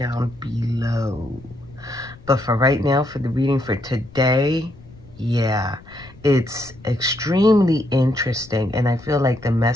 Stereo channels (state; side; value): noise; left; rumble, 22 dB below the sound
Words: below. But for right now, for the reading for today, yeah, it's extremely interesting. And I feel like the